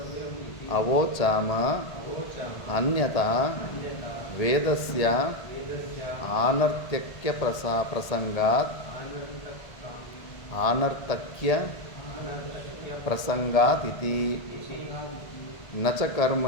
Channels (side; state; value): right; late; 1.7 ms